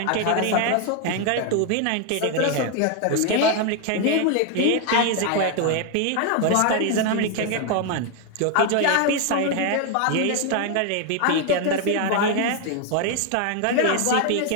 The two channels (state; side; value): different; both; correlation 0.01